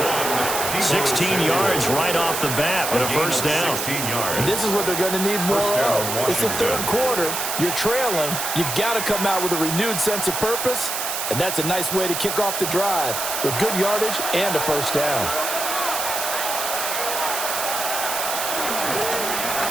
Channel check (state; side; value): noise; right; hiss, 3 dB below the sound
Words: 16 yards right off the bat with a first down. And this is what they're going to need more of. It's the third quarter. You're trailing. You've got to come out with a renewed sense of purpose. And that's a nice way to kick off the drive with good yardage and a first down.